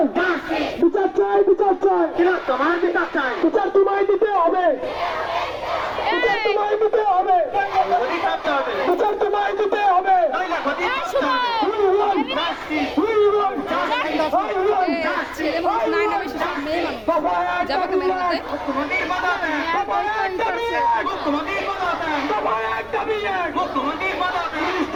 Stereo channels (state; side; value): identical; both; correlation 1.00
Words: justice বিচার চাই, বিচার চাই, তোমার বিচার চাই বিচার তোমায় দিতে হবে, বিচার তোমায় দিতে হবে, গদি কাটতে হবে বিচার তোমায় দিতে হবে, নইলে গদি কাটতে হবে we want justice we want I want ছেলে মানুষ নাই না বেশি সব মেয়ে মানুষ বাবা এক যাবে দাবি কেমন এক, মতে মুখ্যমন্ত্রীর পদত্যাগ বাবা এক দাবি এক, মুখ্যমন্ত্রীর পদত্যাগ বাবা এক দাবি এক, মুখ্যমন্ত্রীর পদত্যাগ পুলিশ